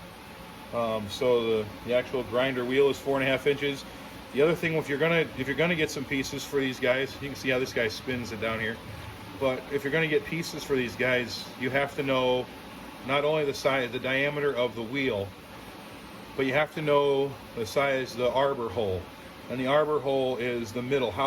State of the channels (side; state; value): both; identical; correlation 1.00